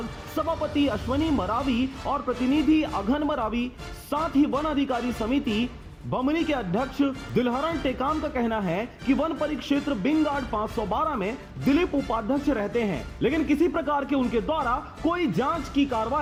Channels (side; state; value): both; identical; correlation 1.00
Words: सभापति अश्वनी मरावी और प्रतिनिधि अघन मरावी, साथ ही वन अधिकारी समिति बमनी के अध्यक्ष दिलहरण टेकाम का कहना है कि वन परिक्षेत्र बिंग गार्ड 512 में दिलीप उपाध्यक्ष रहते हैं, लेकिन किसी प्रकार के उनके द्वारा कोई जांच की